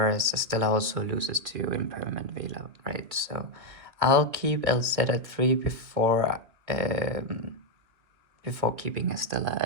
Estella also loses to Impermanent Veiler, right? So I'll keep LZ at 3 before keeping Estella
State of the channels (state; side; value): late; left; 2.7 ms